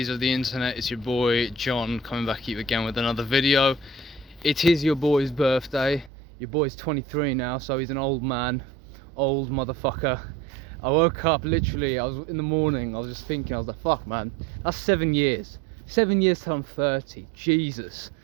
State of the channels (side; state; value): left; drops out; at 6.1 s